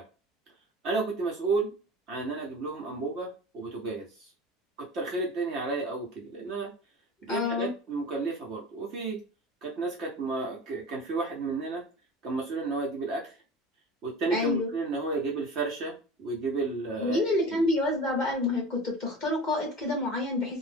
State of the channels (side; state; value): both; normal; correlation 0.36